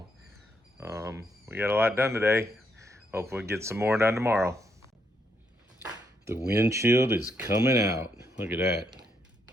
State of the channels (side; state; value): both; normal; correlation 0.76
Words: we got a lot done today. Hopefully get some more done tomorrow. The windshield is coming out. Look at that.